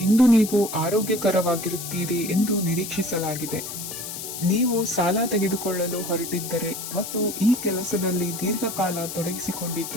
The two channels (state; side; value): noise; left; hiss, 8 dB below the sound